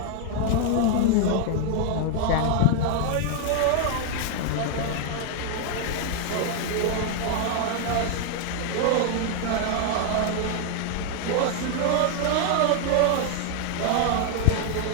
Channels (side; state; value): both; different; correlation 0.00